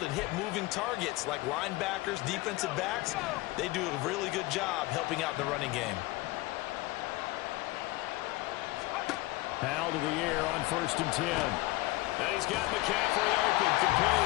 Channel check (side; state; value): right; quieter; 19.8 dB